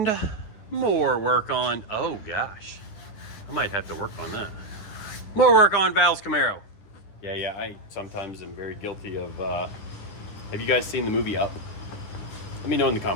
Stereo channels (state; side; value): late; right; 10 ms